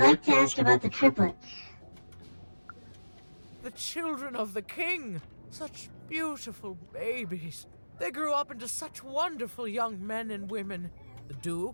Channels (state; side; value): inverted; both; correlation -1.00